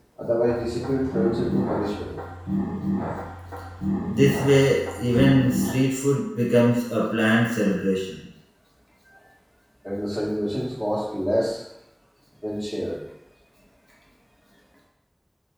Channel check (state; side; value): identical; both; correlation 1.00